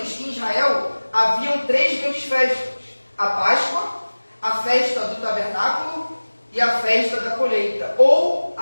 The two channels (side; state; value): both; inverted; correlation -1.00